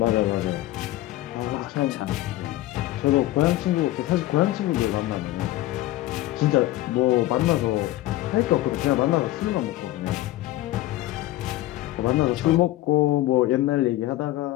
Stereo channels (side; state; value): right; quieter; 16.1 dB